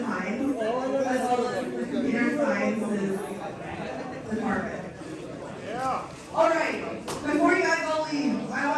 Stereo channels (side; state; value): both; identical; correlation 1.00